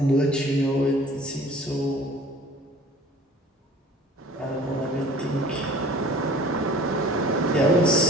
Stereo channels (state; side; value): normal; both; correlation 0.48